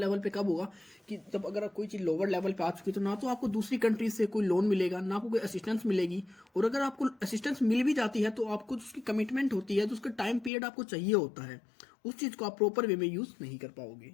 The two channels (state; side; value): drops out; right; at 10.5 s